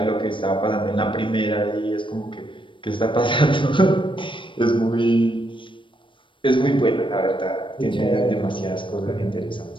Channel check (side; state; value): right; late; 0.24 ms